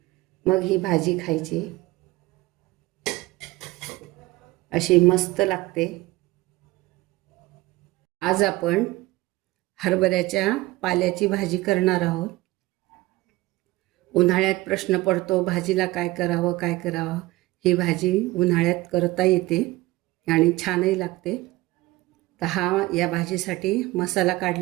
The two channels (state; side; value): quieter; left; 19.4 dB